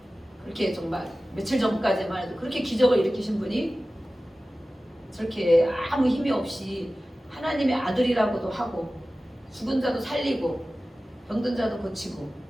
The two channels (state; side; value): normal; both; correlation 0.96